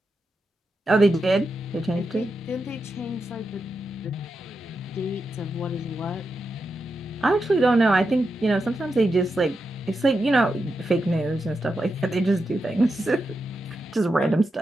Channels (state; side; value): normal; both; correlation 0.87